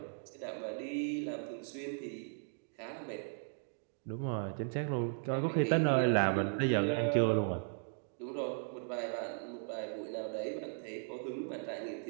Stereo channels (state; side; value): silent; left; digital silence